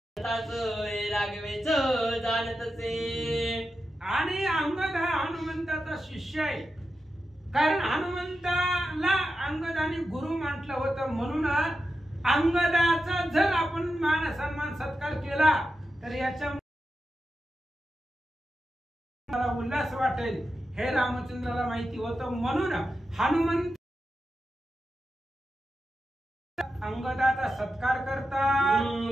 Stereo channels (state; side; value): normal; both; correlation 0.90